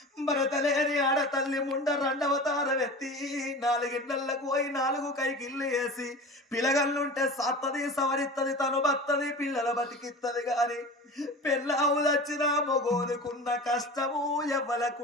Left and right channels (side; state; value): both; normal; correlation 0.34